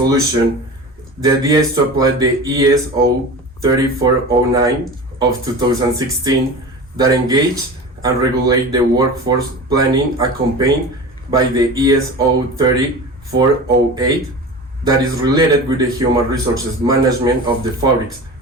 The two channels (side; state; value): both; normal; correlation 0.32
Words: the idea is to apply the ESO 3409 of 2016 that engage and regulate the workforce planning accompanied by the ESO 3408 that is related with the human resources management of the fabrics